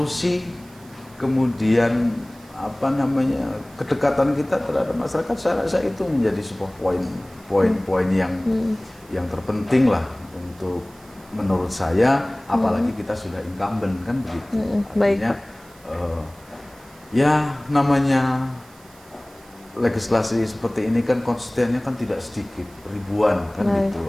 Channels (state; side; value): noise; right; hiss, 26 dB below the sound